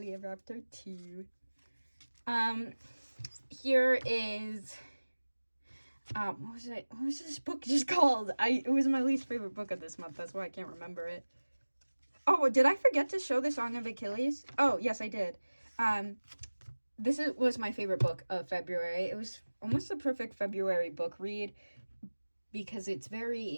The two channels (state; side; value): inverted; both; correlation -1.00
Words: ever after too. Here is what was this book just called? It was my least favorite book of this month. That's why I can't remember it. Oh, did I forget to show the Song of Achilles? Oh, yes, I did. This was my favorite book of February. It was almost a perfect February book read because it's